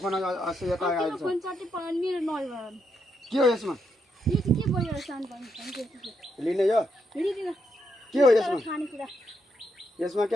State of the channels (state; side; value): normal; both; correlation 0.80